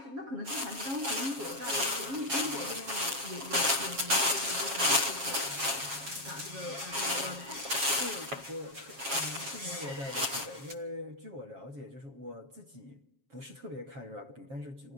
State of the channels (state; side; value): late; left; 7.4 ms